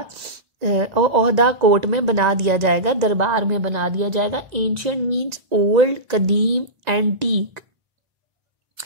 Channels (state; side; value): late; left; 1.9 ms